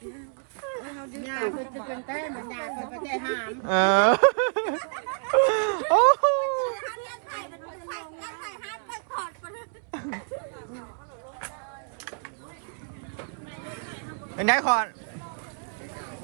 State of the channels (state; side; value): silent; left; 59 dB below the other